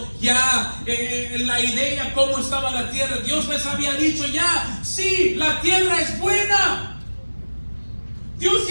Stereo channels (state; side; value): inverted; both; correlation -1.00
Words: ya la idea cómo estaba la tierra. Dios les había dicho ya, sí, la tierra es buena. Dios